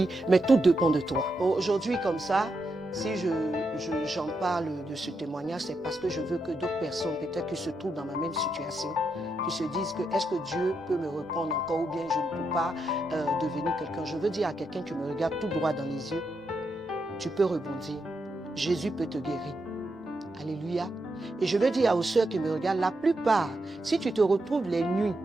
mais tout dépend de toi. Aujourd'hui, comme ça, si j'en parle de ce témoignage, c'est parce que je veux que d'autres personnes, peut-être qui se trouvent dans ma même situation, qui se disent que est-ce que Dieu peut me reprendre encore ou bien je ne peux pas devenir quelqu'un. Je veux dire à quelqu'un qui me regarde tout droit dans les yeux, tu peux rebondir. Jésus peut te guérir. Alléluia. Et je veux dire aux sœurs qui me regardent, la plupart, si tu te retrouves les nuits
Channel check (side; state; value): both; normal; correlation 0.83